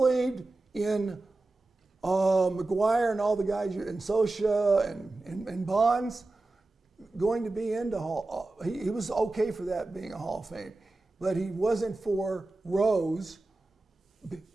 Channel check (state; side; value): quieter; left; 3.1 dB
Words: in McGuire and all the guys, and Sosa and Bonds going to be into Hall. He was okay for that being a Hall of Fame, but he wasn't for Rose